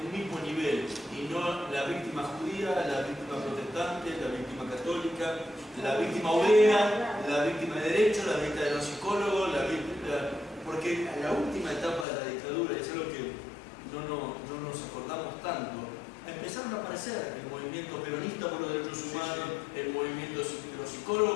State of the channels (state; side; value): drops out; right; at 12.1 s